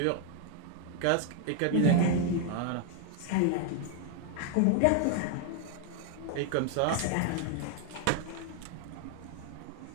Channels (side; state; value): both; different; correlation 0.00